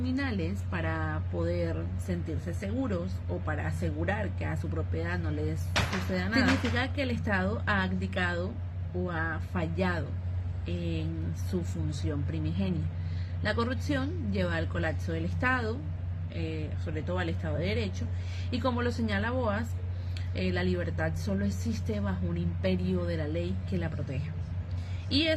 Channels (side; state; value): both; identical; correlation 1.00